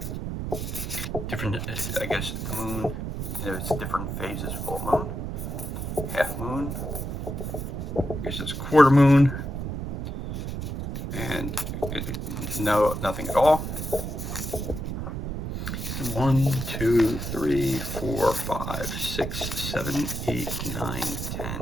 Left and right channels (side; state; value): right; noise; rumble, 4 dB below the sound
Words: Different, I guess, the moon. There's different phases. Full moon, half moon. I guess it's quarter moon, and nothing at all. 1, 2, 3, 4, 5, 6, 7, 8, 9, 10.